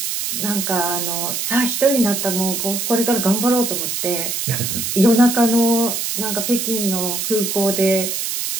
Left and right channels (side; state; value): right; noise; hiss, 2 dB below the sound